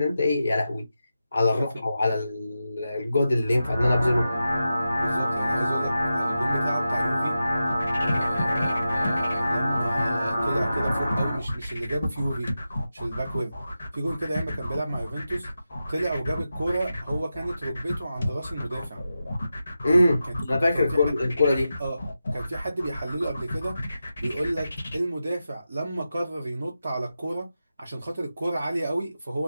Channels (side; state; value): both; inverted; correlation -0.91